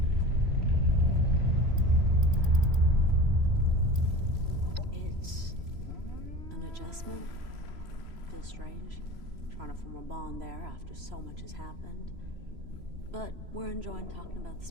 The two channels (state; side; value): late; left; 3.0 ms